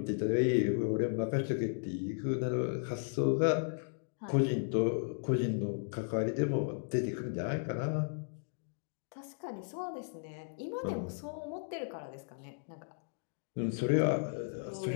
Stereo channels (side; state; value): right; silent; digital silence